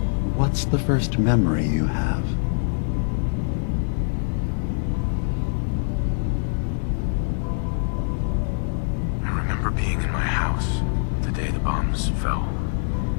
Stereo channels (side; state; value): right; silent; digital silence